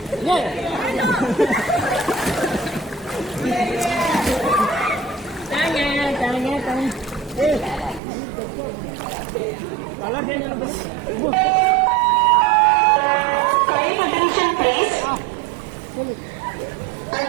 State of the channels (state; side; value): drops out; left; at 8.0 s